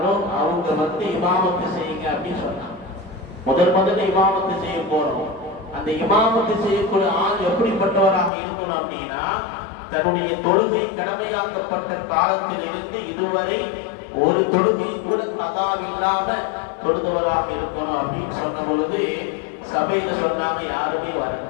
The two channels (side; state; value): right; drops out; at 8.3 s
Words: அவங்க இமாமத்து செய்யுங்க அப்படின்னு சொன்னாங்க. முதல்ல இமாமத்து செய்ய போறோம். அந்த இமாமத்து செய்யக்கூடிய ஆள் எப்படிப்பட்டவராக இருக்கணும் அப்படின்னா, தன்னுடைய தொழுகை கடமையாக்கப்பட்ட காலத்திலிருந்து இதுவரை ஒரு தொழுகை கூட கதா இல்லாம தொழுதவராக இருக்கணும் அப்படின்னு சொன்ன பொழுது சபையில சொன்னாங்க, யாருமே வரல.